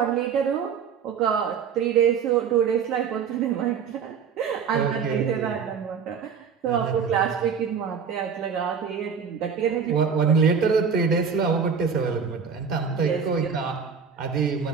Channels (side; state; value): left; quieter; 6.5 dB